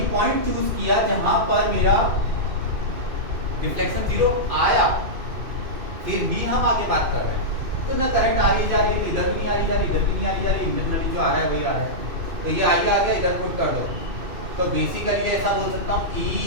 पॉइंट चूज किया जहां पर मेरा डिफ्लेक्शन 0 आया, फिर भी हम आगे बात कर रहे हैं, तो ना करंट आ रही जा रही है, तो इधर नहीं आ रही जा रही, इधर भी नहीं आ रही जा रही, इंटरनली जो आ रहा है वही आ रहा है, तो ये आगे आ गया, इधर पुट कर दो, तो बेसिकली ऐसा बोल सकता हूँ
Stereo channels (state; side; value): late; left; 2.6 ms